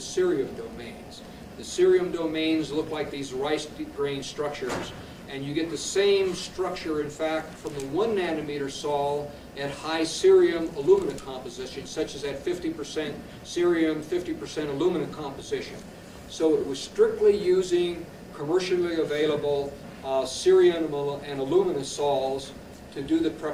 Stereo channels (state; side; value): identical; both; correlation 1.00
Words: cerium domains. The cerium domains look like these rice grain structures, and you get the same structure, in fact, from the 1 nanometer sol at high cerium alumina composition, such as at 50% cerium, 50% alumina composition. So it was strictly using commercially available cerium and alumina sols to do the